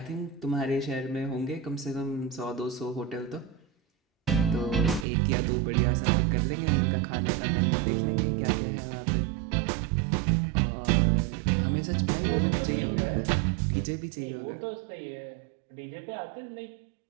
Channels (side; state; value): left; drops out; at 5.1 s